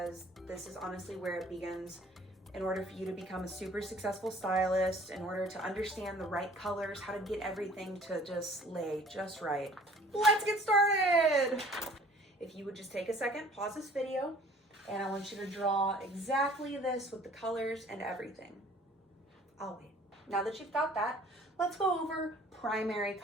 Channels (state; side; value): normal; both; correlation 0.51